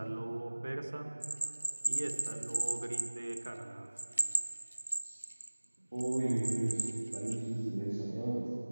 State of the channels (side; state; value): both; inverted; correlation -1.00